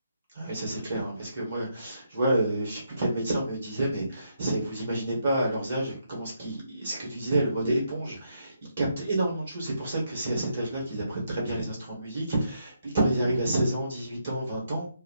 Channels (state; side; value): inverted; both; correlation -0.78